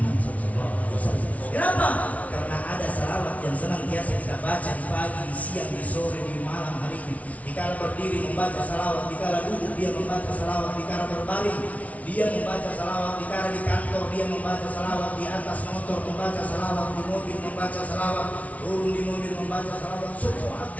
SAW. Kenapa? Karena ada salawat yang senantiasa kita baca di pagi, di siang, di sore, di malam hari ini. Dikala berdiri membaca salawat, dikala duduk dia membaca salawat, dikala berbaring dia membaca salawat, dikala di kantor dia membaca salawat, di atas motor membaca salawat, di mobil membaca salawat, turun di mobil membaca salawat, semua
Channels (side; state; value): right; late; 0.068 ms